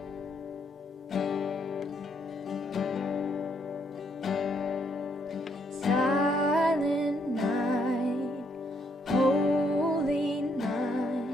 Silent night, holy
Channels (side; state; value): both; normal; correlation 0.72